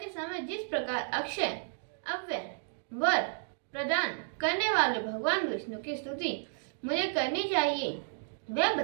समय जिस प्रकार अक्षय अव्यय वर प्रदान करने वाले भगवान विष्णु की स्तुति मुझे करनी चाहिए, वह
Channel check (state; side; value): silent; left; digital silence